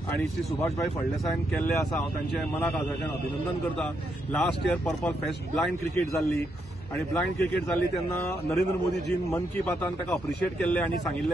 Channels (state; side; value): normal; both; correlation 0.79